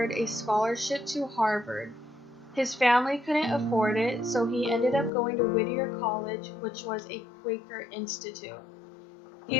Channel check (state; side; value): drops out; right; at 5.1 s